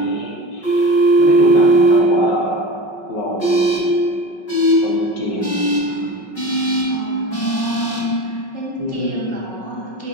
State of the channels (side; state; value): right; late; 5.4 ms